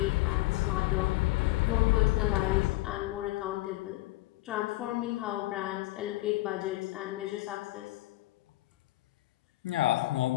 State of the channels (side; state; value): right; quieter; 18.6 dB